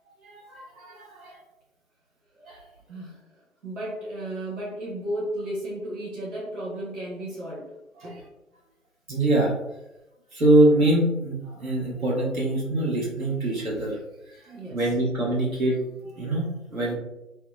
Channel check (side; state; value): both; normal; correlation 0.41